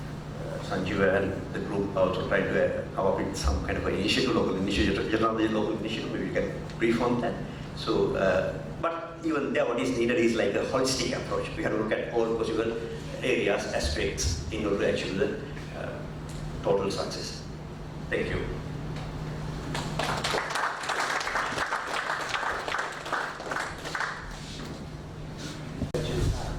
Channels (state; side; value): identical; both; correlation 1.00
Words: Sanjeev and the group also try to come up with some kind of an initiative, local initiative, generally local initiative, maybe we can brief on that. So, but even there what is needed is like a holistic approach. We have to look at all possible areas, aspects in order to achieve the total success. Thank you.